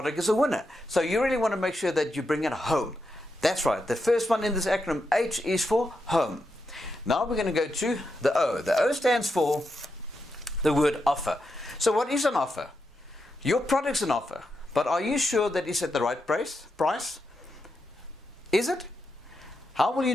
is a winner. So you really want to make sure that you bring it home. That's right. The first one in this acronym, H, is for home. Now we're going to go to the O. The O stands for the word offer. So what is an offer? Your product's an offer, but are you sure that it's at the right price? Is it? How will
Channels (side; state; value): both; normal; correlation 0.85